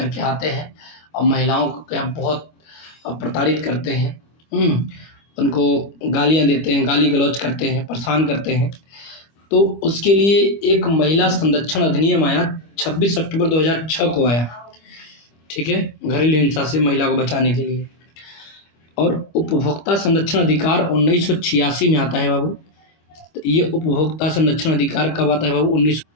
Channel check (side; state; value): right; late; 25 ms